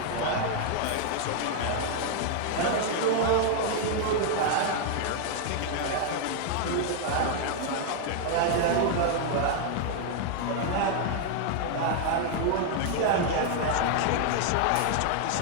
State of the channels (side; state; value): both; different; correlation 0.00